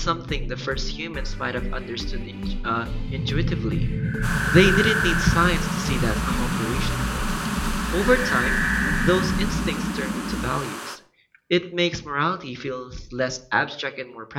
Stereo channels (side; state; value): both; identical; correlation 1.00